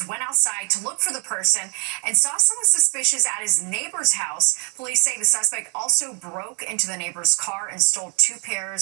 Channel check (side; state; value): left; quieter; 38.2 dB